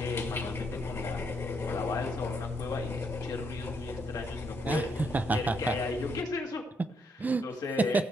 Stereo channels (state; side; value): normal; both; correlation 0.75